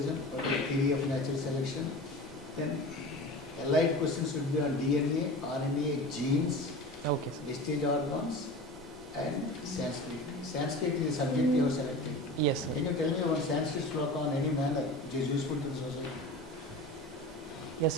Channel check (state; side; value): normal; both; correlation 0.34